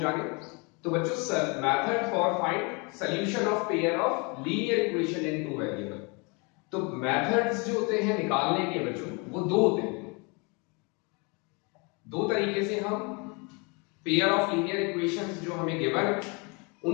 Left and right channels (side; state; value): right; quieter; 30.8 dB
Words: तो बच्चों, method for find solution of pair of linear equation in two variable. तो मेथड्स जो होते हैं निकालने के बच्चों वो दो होते हैं। दो तरीके से हम पेयर ऑफ लीनियर इक्वेशंस जो हमें गिवन है